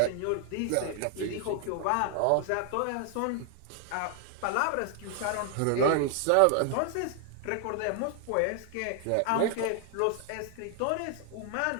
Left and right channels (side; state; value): both; different; correlation 0.00